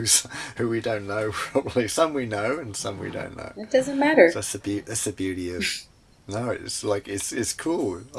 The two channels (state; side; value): identical; both; correlation 1.00